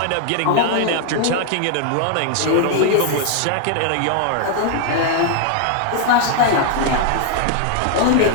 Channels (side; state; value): both; different; correlation 0.00